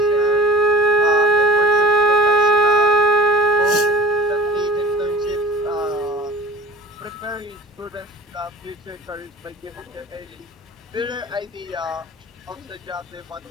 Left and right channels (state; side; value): normal; both; correlation 0.42